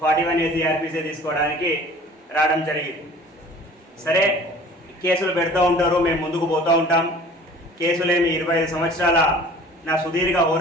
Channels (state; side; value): normal; both; correlation 0.47